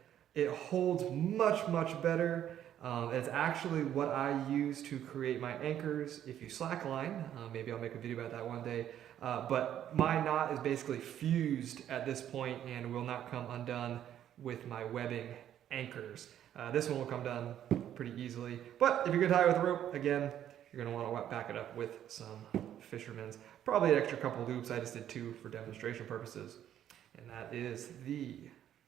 it holds much better. It's actually what I use to create my anchors if you slackline. Maybe I'll make a video about that one day. But my knot is basically fused at this point and will not come undone with my webbing anchors. This one will come done pretty easily. But if you're going to tie it with a rope, again, you're going to want to back it up with some fisherman's. Probably an extra couple loops. I just did 2 for demonstration purposes. And that is the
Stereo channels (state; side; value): quieter; left; 10.7 dB